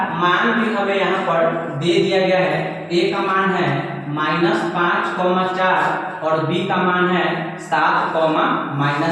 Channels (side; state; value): both; identical; correlation 1.00